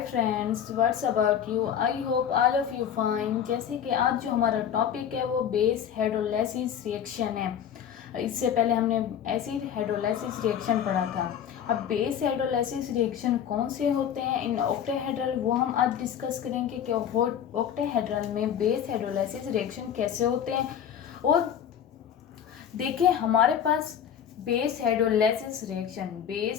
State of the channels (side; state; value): right; quieter; 8.9 dB